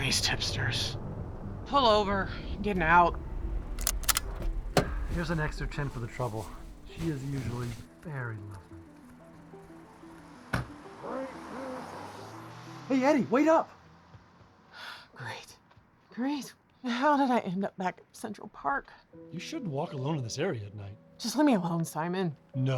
hipsters. Pull over. I'm getting out. Here's an extra 10 for the trouble. She is usually very lovely. Hey, Eddie, wait up! Great. How did I end up back at Central Park? You shouldn't walk alone in this area at night. Just leave me alone, Simon.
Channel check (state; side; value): identical; both; correlation 1.00